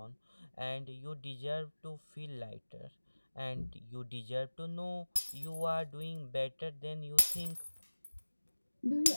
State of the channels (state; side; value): inverted; both; correlation -1.00